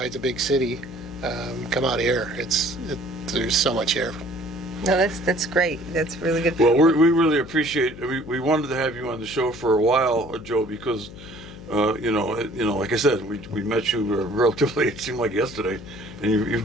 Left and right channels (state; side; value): noise; left; hum, 15 dB below the sound